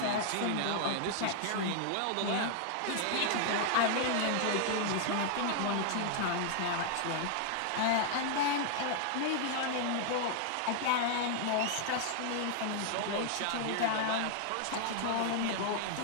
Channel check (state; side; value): different; both; correlation 0.00